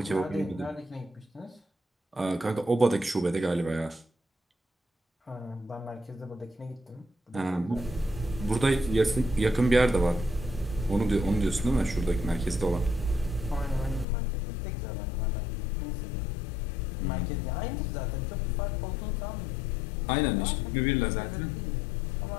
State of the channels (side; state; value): right; drops out; at 14.1 s